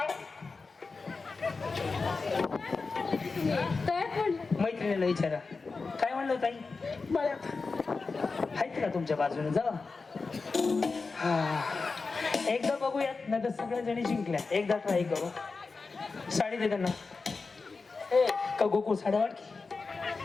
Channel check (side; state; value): right; quieter; 4.2 dB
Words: मैत्रिणीला विचारा काय म्हणलं ताई मळ्यात आहेत का तुमच्या बाजूने जा हा एकदा बघूयात नाही तर सगळ्या जणी जिंकल्या एकदा ट्राय करू साडी दे त्यांना ए का गोकुळ साड्या वाट की